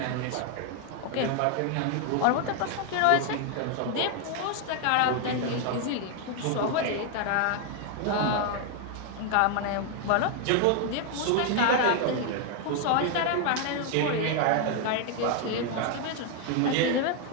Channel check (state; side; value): different; both; correlation 0.01